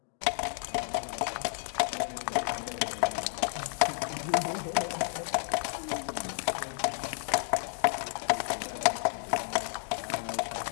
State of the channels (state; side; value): silent; right; digital silence